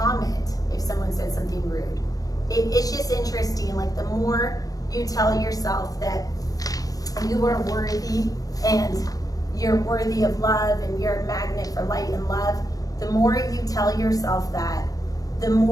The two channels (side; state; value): right; late; 0.17 ms